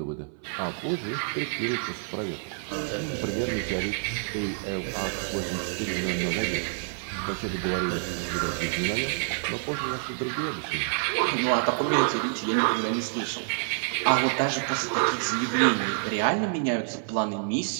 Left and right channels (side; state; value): left; silent; 60 dB below the other